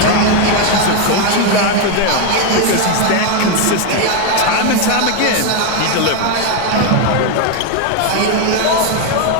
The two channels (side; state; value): both; different; correlation 0.01